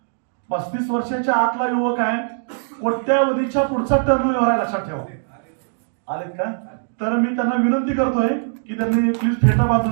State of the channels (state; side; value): silent; left; digital silence